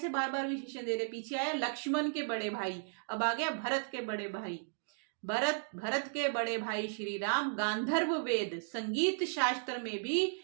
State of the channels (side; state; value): left; silent; digital silence